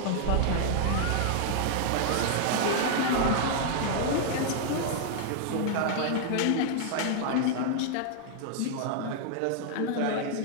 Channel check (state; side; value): different; both; correlation 0.00